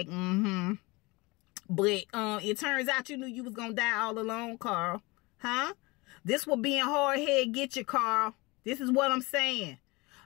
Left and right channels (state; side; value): quieter; right; 24.4 dB